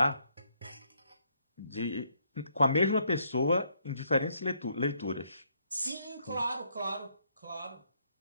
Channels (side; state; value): both; inverted; correlation -0.72